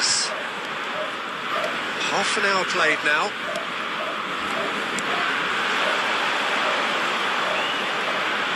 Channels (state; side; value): identical; both; correlation 1.00